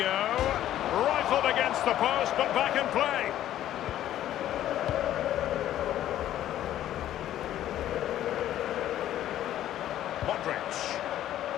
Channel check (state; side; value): quieter; right; 12.4 dB